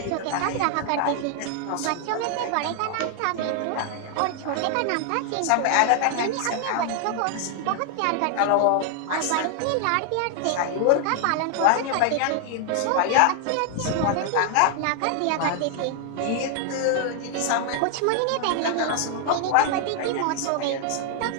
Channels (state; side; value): different; both; correlation 0.00